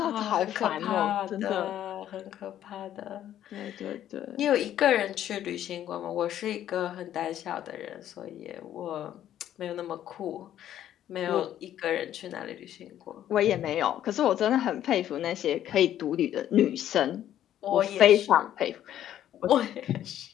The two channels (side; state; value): right; quieter; 11.4 dB